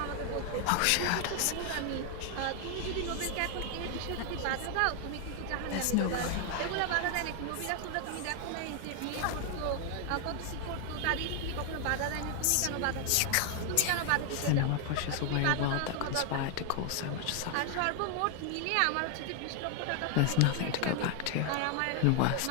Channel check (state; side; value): different; both; correlation 0.00